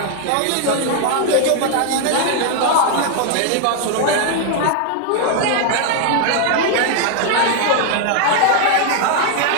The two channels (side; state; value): both; different; correlation 0.00